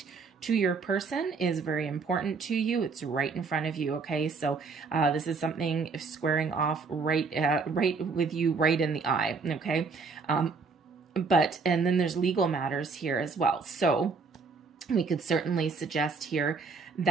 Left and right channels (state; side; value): quieter; left; 4.6 dB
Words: to your person is very important to you. It's right in front of you. Okay, so this is something squaring off right with you, right in the eye. Okay, and then there's legal matters here as well. So we could certainly suggest here